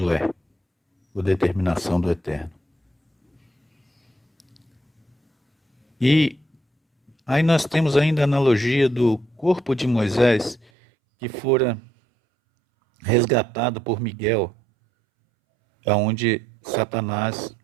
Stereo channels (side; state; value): left; drops out; at 10.7 s